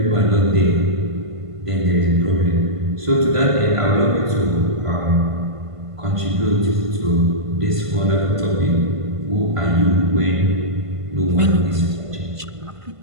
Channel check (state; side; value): late; left; 1.5 ms